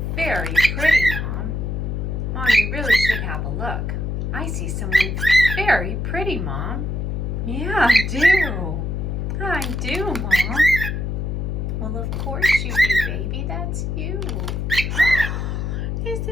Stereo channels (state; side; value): noise; left; hum, 2 dB below the sound